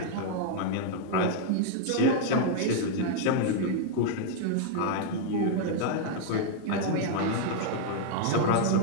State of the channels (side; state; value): both; different; correlation 0.00